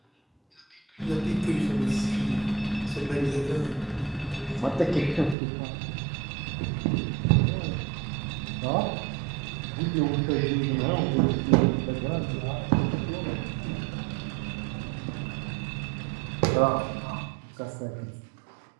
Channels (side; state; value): left; drops out; at 5.4 s